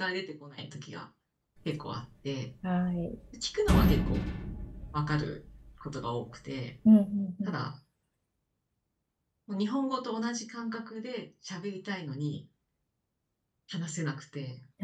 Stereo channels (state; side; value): identical; both; correlation 1.00